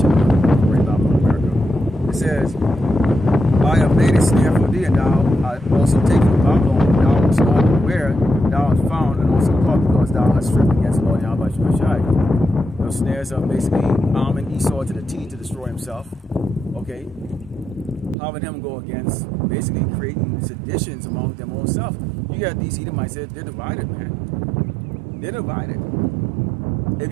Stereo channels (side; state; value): left; drops out; at 18.2 s